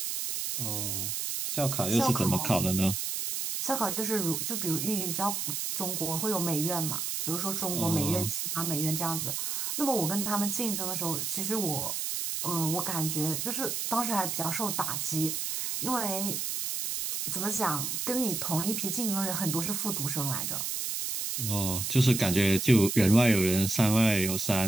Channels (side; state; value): right; noise; hiss, 2 dB below the sound